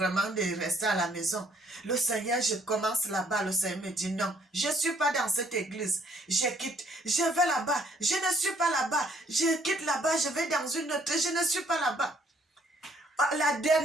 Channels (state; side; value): normal; both; correlation 0.64